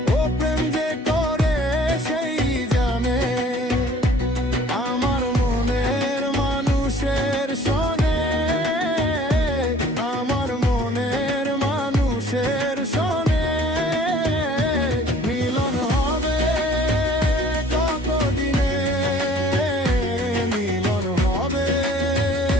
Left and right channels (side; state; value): both; normal; correlation 0.53